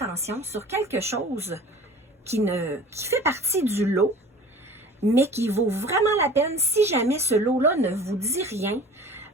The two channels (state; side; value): normal; both; correlation 0.43